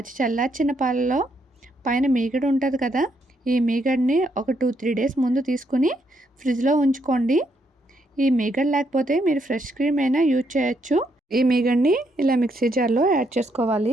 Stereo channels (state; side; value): normal; both; correlation 0.76